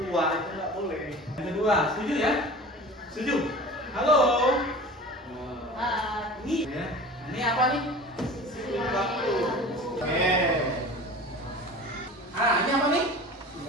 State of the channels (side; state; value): both; normal; correlation 0.38